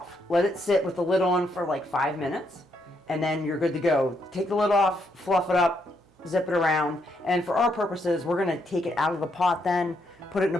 Let it sit with the lid on for like 5 minutes. And then you're good to go. Take the lid off, fluff it up, zip it around. And for our purposes, we're going to take it out of the pot then, put it in a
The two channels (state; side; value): normal; both; correlation 0.76